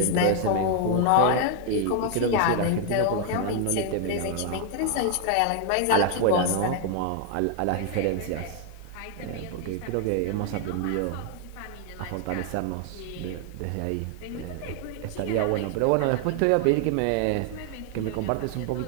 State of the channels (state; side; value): different; both; correlation 0.00